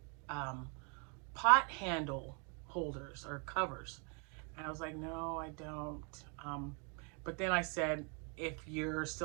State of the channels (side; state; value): left; quieter; 36.2 dB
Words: pot handle holders or covers. And I was like, no, I don't. But then I said, if you're